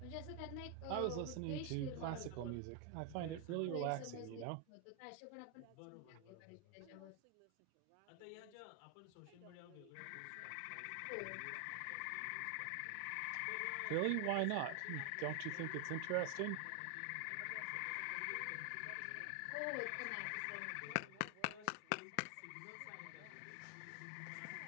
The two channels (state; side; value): different; both; correlation 0.00